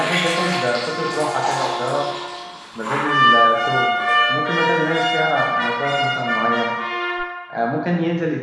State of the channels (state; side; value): identical; both; correlation 1.00